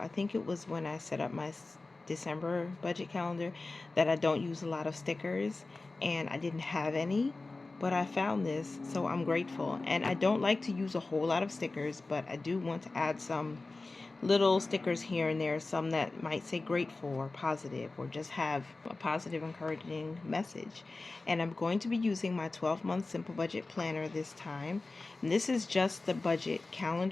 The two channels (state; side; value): quieter; right; 3.4 dB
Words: think it was when I set up my December budget calendar, that I don't use a lot of stickers, and I didn't have any. But I found this, so I'm grateful. And I don't like to use a whole lot of stickers, but I do want to add some little stickers here and there, some that might say grateful or positive or just have a positive, encouraging message. And I'm going to be using my 12-month simple budget planner this time. And this is just the budget